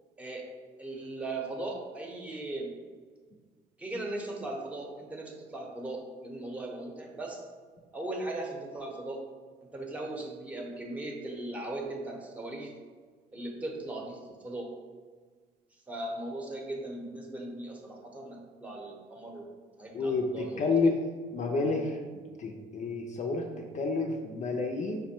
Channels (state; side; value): normal; both; correlation 0.58